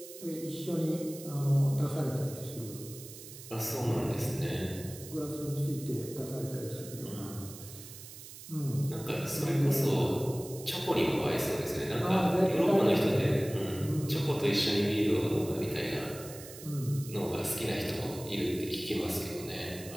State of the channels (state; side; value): noise; right; hiss, 15 dB below the sound